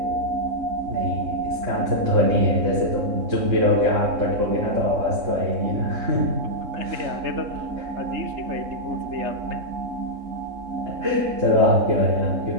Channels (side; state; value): left; late; 3.7 ms